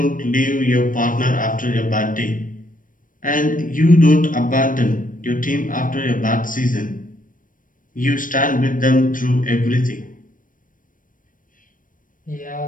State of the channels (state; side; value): late; right; 0.39 ms